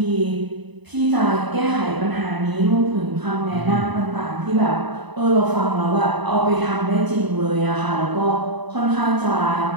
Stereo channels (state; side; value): late; left; 1.0 ms